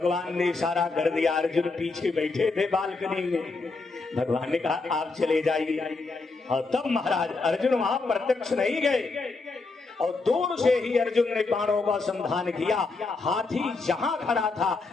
ने इशारा कर दिया। अर्जुन पीछे बैठे थे बालकनी में, भगवान ने कहा आप चले जाइए। और तब महाराज अर्जुन वहां प्रत्यक्ष नहीं गए और दूर से ही अर्जुन ने बाणों का संधान किया। हाथी जहां खड़ा था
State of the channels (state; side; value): quieter; right; 3.8 dB